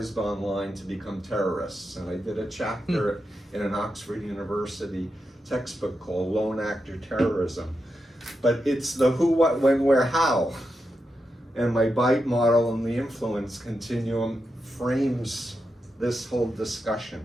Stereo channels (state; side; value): normal; both; correlation 0.87